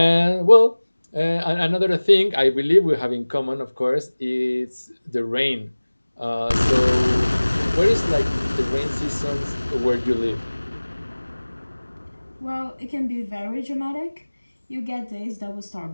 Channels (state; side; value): inverted; both; correlation -1.00